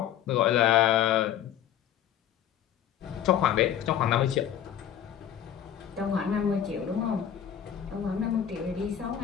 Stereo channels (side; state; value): right; quieter; 10.0 dB